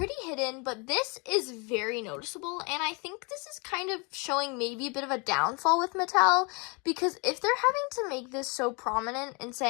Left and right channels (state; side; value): quieter; right; 31.5 dB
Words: hidden, but this is very noticeable. And I think this is kind of showing maybe a bit of a downfall with Mattel, because if they're having to make this so prominent and